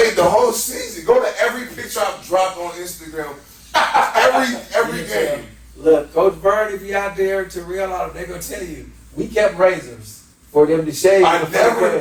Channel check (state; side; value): identical; both; correlation 1.00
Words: the whole season. Go to every picture I've dropped on Instagram. Every game. Look, Coach Vern, if you out there, Terrell, all they're gonna tell you, we kept razors for them to shave. I before the never